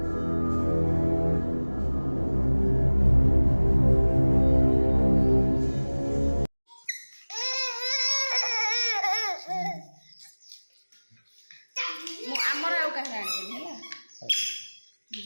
ଆମର ଆଉ କାହାର ଆଣିବେନି ହେଲା।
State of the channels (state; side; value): inverted; both; correlation -1.00